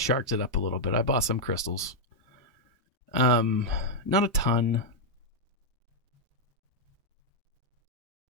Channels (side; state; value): both; normal; correlation -0.03